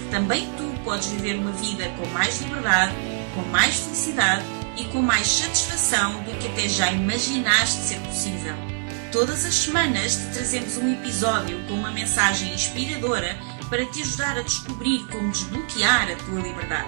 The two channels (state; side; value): silent; left; 58 dB below the other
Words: também tu podes viver uma vida com mais liberdade, com mais felicidade e com mais satisfação do que até já imaginaste ser possível. Todas as semanas te trazemos um episódio com uma mensagem inspiradora para te ajudar a descobrir como desbloquear a tua